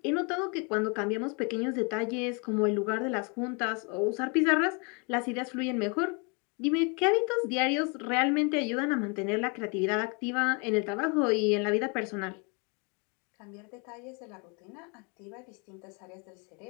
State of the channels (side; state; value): right; quieter; 33.6 dB